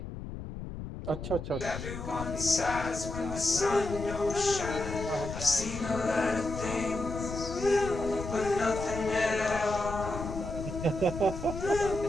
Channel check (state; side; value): noise; left; rumble, 8 dB below the sound